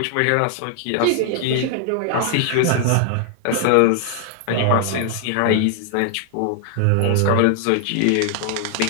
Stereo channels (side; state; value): both; different; correlation 0.00